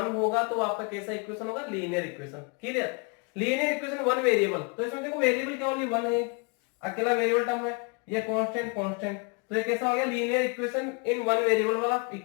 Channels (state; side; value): quieter; right; 33.6 dB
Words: होगा तो आपका कैसा इक्वेशन होगा, linear equation, clear. Linear equation 1 variable, तो इसमें देखो वेरिएबल क्या ओनली 1 है, अकेला वेरिएबल टर्म है, ये कांस्टेंट कांस्टेंट, तो ये कैसा हो गया, लीनियर इक्वेशन इन 1 वेरिएबल वाला